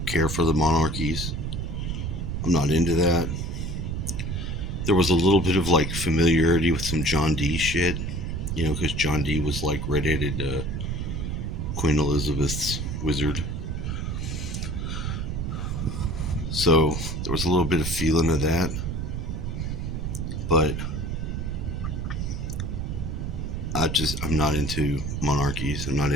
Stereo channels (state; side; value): noise; right; rumble, 3 dB below the sound